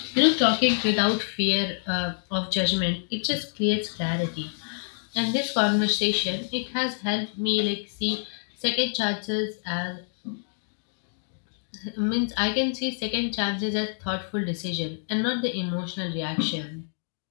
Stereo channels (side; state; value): right; silent; digital silence